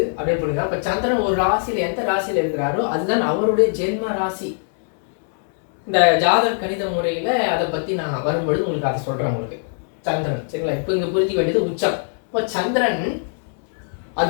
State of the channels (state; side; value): silent; right; 64 dB below the other